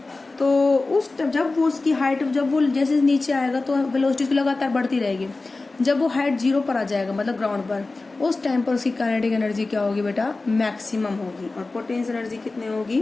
तो जब वो उसकी हाइट, जब वो जैसे नीचे आएगा तो वेलोसिटी उसकी लगातार बढ़ती रहेगी। जब वो हाइट 0 पर आ जाएगा, मतलब ग्राउंड पर, उस टाइम पर उसकी काइनेटिक एनर्जी क्या होगी बेटा, मैक्सिमम होगी, और पोटेंशियल एनर्जी कितनी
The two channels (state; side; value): quieter; right; 3.4 dB